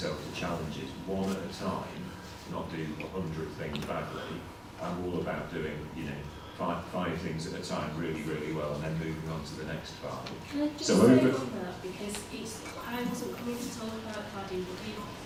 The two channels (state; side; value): identical; both; correlation 1.00